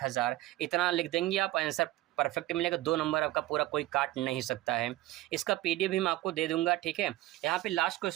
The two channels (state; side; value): quieter; left; 16.8 dB